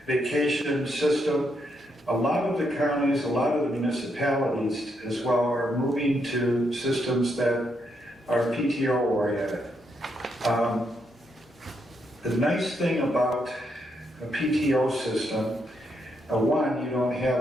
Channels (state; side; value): normal; both; correlation 0.78